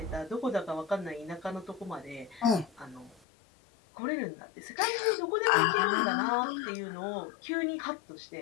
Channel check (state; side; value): drops out; right; at 3.2 s